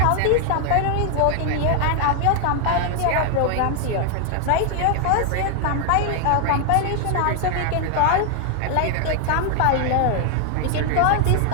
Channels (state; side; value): different; both; correlation 0.00